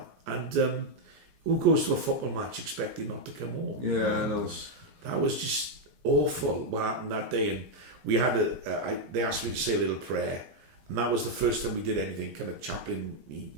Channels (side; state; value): left; late; 15 ms